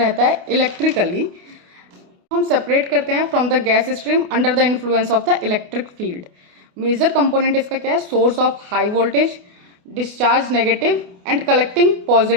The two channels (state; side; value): late; left; 28 ms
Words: है इलेक्ट्रिकली। हम सेपरेट करते हैं from the gas stream under the influence of the electric field. Major component इसका क्या है? Source of high voltage, discharge negative and collecting